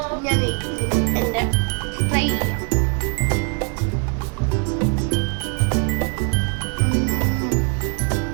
ഞാൻ എൻ്റെ ഫ്രൈ ചെയ്യാം.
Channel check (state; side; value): quieter; left; 37.8 dB